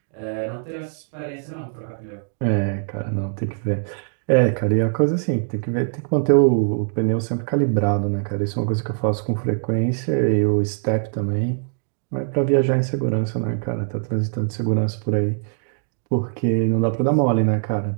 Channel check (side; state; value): left; silent; digital silence